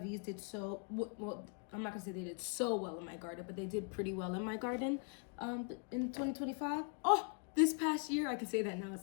did so well. I'm not gonna say they did so well in my garden, but they did pretty well in my garden in 2025. Oh, this past year, I can say that now, it's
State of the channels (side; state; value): right; quieter; 38.7 dB